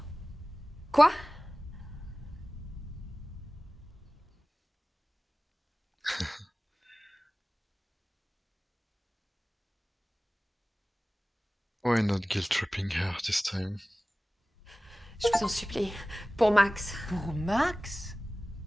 Quoi? Why not guilt tripping her this time? Je vous en supplie. Pour Max. Pour Max?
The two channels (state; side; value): normal; both; correlation 0.97